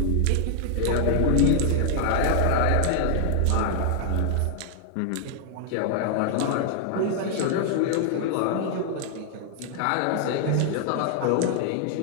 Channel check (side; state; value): both; different; correlation 0.00